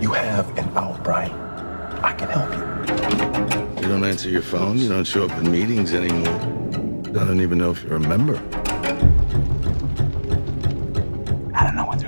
You have an out, Brian. I can help you. You don't answer your phone. You don't show up in meetings anymore. I don't even know if you're a member. I don't know what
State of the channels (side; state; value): both; inverted; correlation -1.00